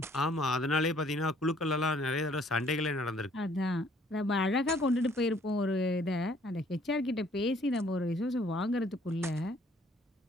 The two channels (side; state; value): both; normal; correlation 0.61